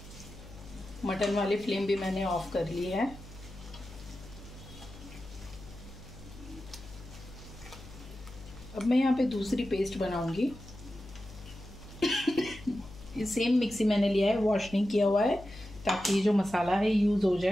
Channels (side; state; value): left; noise; hum, 17 dB below the sound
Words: मटन वाली फ्लेम भी मैंने ऑफ कर ली है। अब मैं यहाँ पे दूसरी पेस्ट बनाऊंगी। ये सेम मिक्सी मैंने लिया है, वॉश नहीं किया हुआ है, ताकि ये जो मसाला है यूज हो